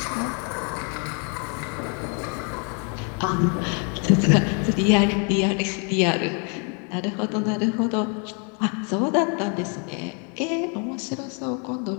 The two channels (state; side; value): quieter; right; 37.8 dB